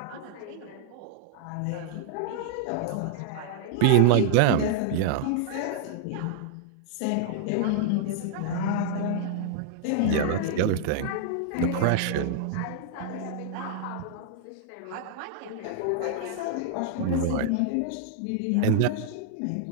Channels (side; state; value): both; different; correlation -0.01